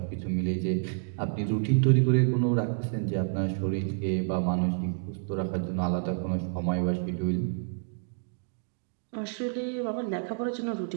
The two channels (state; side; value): silent; left; 58 dB below the other